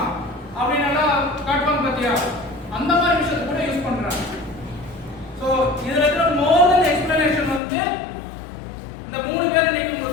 அப்படின்னு எல்லாம் காட்டுவாங்க பாத்தியா? அந்த மாதிரி விஷயத்தை கூட யூஸ் பண்றாங்க. சோ இதுல இருக்கிற மோர் தென் எக்ஸ்பிளனேஷன் வந்து இந்த மூணு பேர் இன்னைக்கு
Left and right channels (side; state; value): right; drops out; at 7.6 s